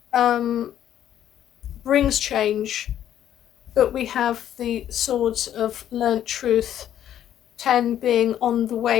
brings change, but we have the swords of learnt truth, 10 being on the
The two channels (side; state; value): right; quieter; 10.9 dB